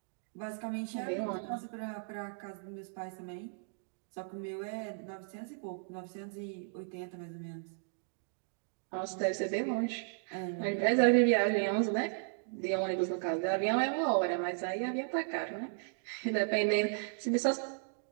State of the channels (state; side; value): silent; left; digital silence